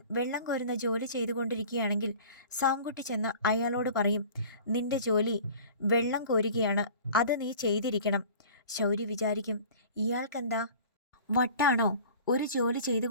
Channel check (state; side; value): inverted; both; correlation -0.44